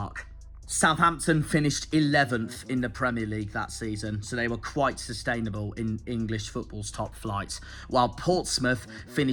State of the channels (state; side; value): identical; both; correlation 1.00